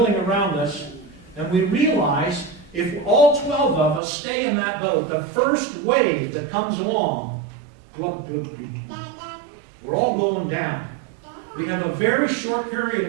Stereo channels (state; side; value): drops out; left; at 4.0 s